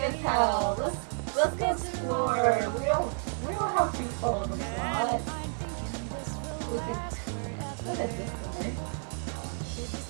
pal. Let's go explore. We don't have to follow the plot. Look at this guy.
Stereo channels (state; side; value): silent; left; 57 dB below the other